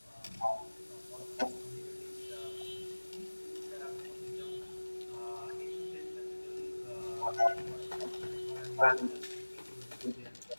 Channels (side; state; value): both; inverted; correlation -1.00